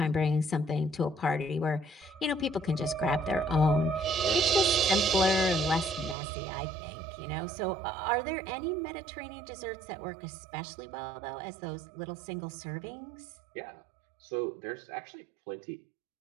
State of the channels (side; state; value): left; drops out; at 6.2 s